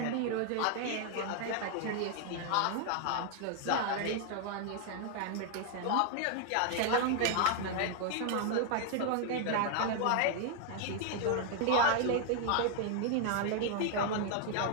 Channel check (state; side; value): different; both; correlation 0.00